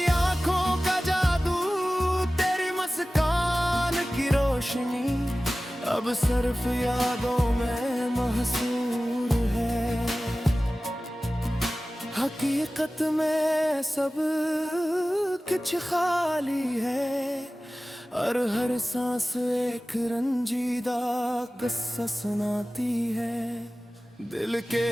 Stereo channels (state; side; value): normal; both; correlation 0.96